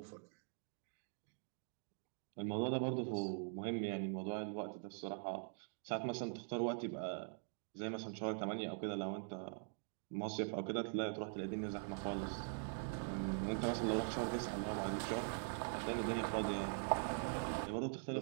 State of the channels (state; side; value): silent; left; digital silence